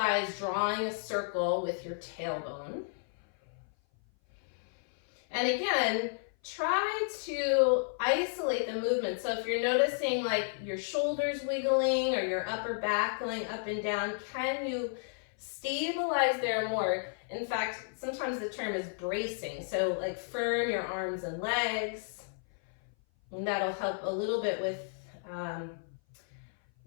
drawing a circle with your tailbone. And again, try to isolate the movement. So if you're noticing like your shoulders wiggling or your upper back going up and down, can you stabilize there more? In fact, sometimes the term is bracing. So like firm your arms and legs, and that'll help a little bit with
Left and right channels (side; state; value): right; silent; 56 dB below the other